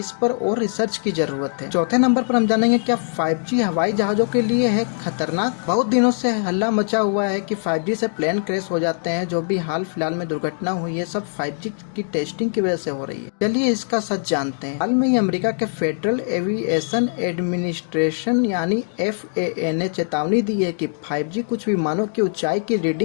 पर और रिसर्च की ज़रूरत है। चौथे नंबर पर हम जानेंगे क्या 5G हवाई जहाज़ों के लिए है खतरनाक। बहुत दिनों से हल्ला मचा हुआ है कि 5G से प्लेन क्रैश हो जाते हैं। जो भी हाल फिलहाल में दुर्घटना हुई है, सब 5G की टेस्टिंग की वजह से हो रही है। चलिए इसका सच जानते हैं। हाल में ही अमेरिका के फेडरल एविएशन एडमिनिस्ट्रेशन यानी FAA ने चेतावनी दी है कि 5G कुछ विमानों की ऊंचाई की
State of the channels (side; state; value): right; silent; digital silence